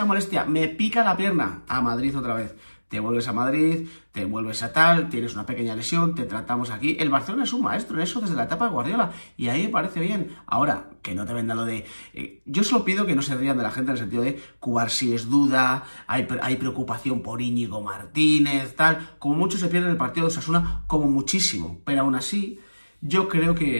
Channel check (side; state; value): both; inverted; correlation -1.00